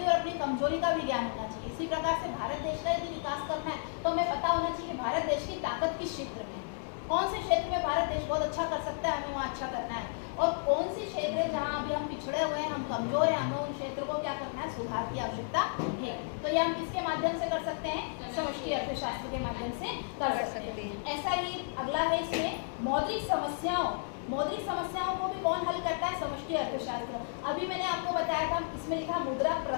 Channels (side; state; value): right; silent; digital silence